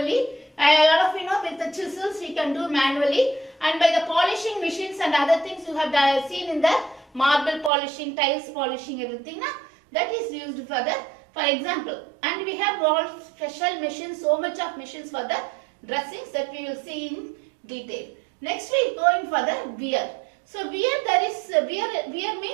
A lot of with the chisels we can do manually, and by the polishing machines and other things you have seen in the marble polishing, tiles polishing, everything that is used for example. And we have all special machines, so much of machines for the dressings that we will see in detail. Next we go in for the wear. So wear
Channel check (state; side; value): drops out; left; at 7.7 s